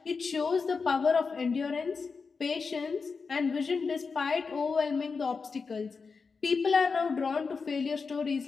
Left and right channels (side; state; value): right; quieter; 4.9 dB